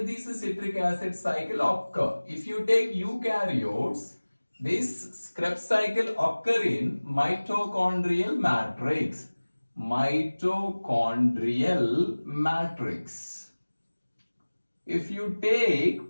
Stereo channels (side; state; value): both; inverted; correlation -1.00